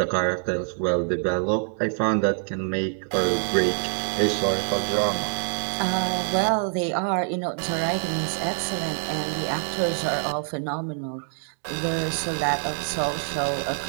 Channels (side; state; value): left; silent; digital silence